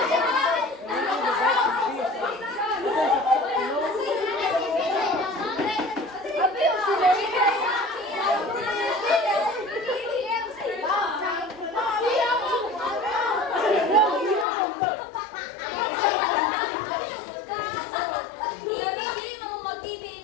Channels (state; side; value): drops out; right; at 14.5 s